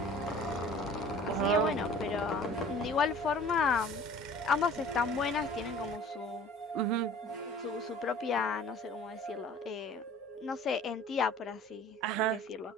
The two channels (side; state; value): both; normal; correlation 0.47